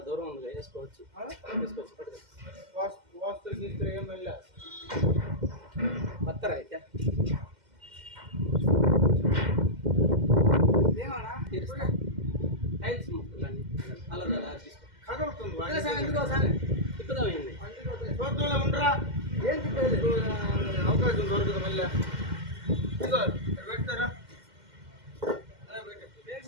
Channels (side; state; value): left; late; 2.1 ms